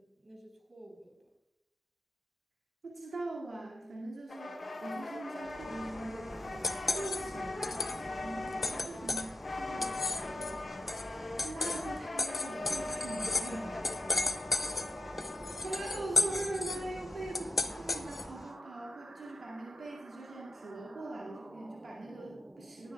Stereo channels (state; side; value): normal; both; correlation 0.86